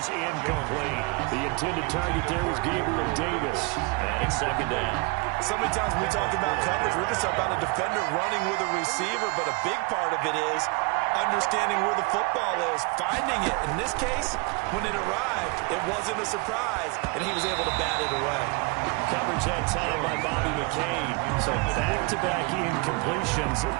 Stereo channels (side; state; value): left; quieter; 29.0 dB